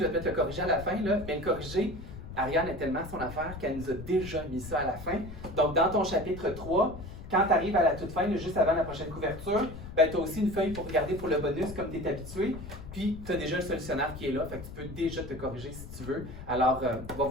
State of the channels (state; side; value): noise; left; rumble, 12 dB below the sound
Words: vais peut-être le corriger à la fin, là, mais le corriger, Ariane est tellement son affaire qu'elle nous a déjà mis ça à la fin. Donc, dans ton chapitre 3, quand tu arrives à la toute fin, là, juste avant la prochaine couverture, ben, tu as aussi une feuille pour regarder pour le bonus, comme tu es habitué. Puis, tu as déjà le solutionnaire qui est là, fait que tu peux déjà te corriger si tu veux. Alors, va